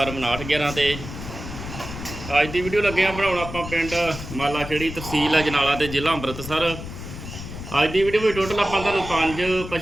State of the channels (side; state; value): left; noise; rumble, 10 dB below the sound